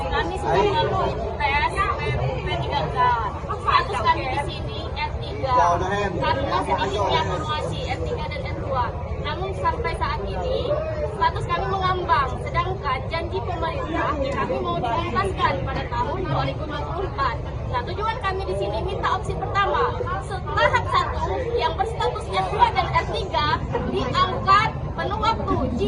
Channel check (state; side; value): identical; both; correlation 1.00